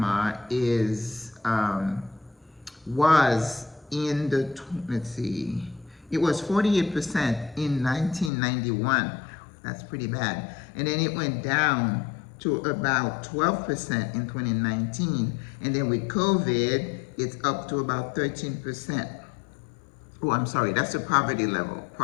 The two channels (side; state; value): right; drops out; at 8.3 s